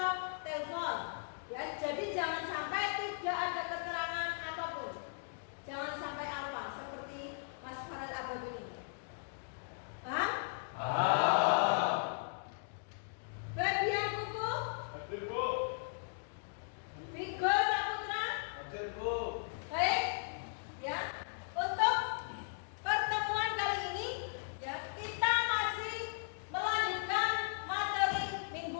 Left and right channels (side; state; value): right; silent; digital silence